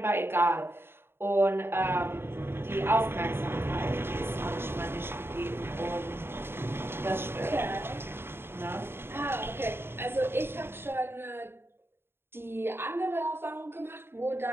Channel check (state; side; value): late; left; 0.11 ms